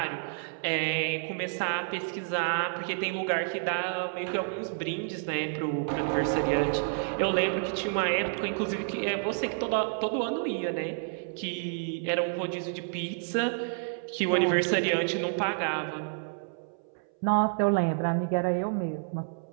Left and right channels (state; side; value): silent; left; 58 dB below the other